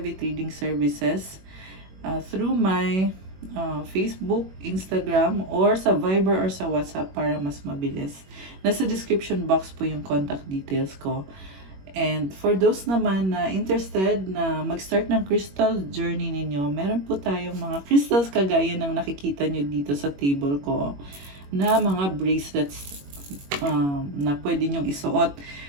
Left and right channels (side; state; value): left; late; 21 ms